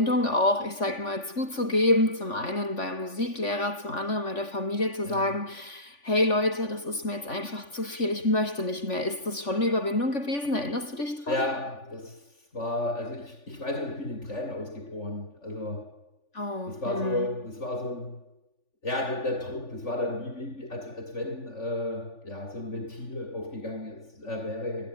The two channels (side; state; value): right; late; 3.5 ms